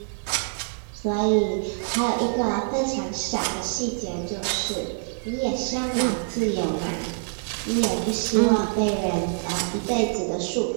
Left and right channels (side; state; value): left; silent; digital silence